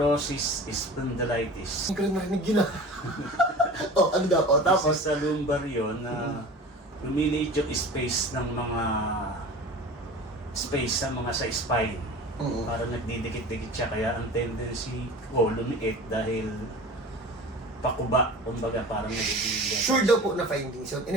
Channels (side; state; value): both; normal; correlation 0.38